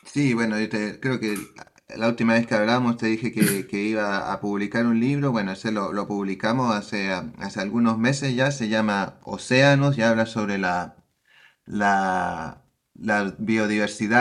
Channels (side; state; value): both; identical; correlation 1.00